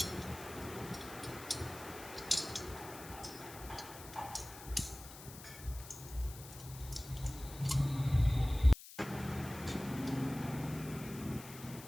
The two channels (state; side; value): noise; left; hiss, 15 dB below the sound